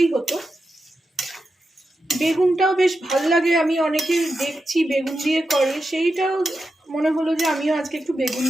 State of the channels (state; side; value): normal; both; correlation 0.89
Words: হতো। বেগুনটাও বেশ ভাল লাগে, আমি অনেকে দেখছি বেগুন দিয়ে করে, সেইটাও মনে হলো যে আমিও আজকে একটু বেগুন